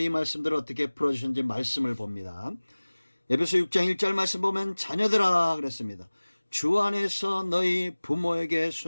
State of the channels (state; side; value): inverted; both; correlation -1.00